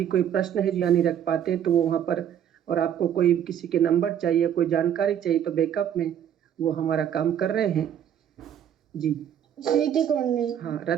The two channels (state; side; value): quieter; left; 9.6 dB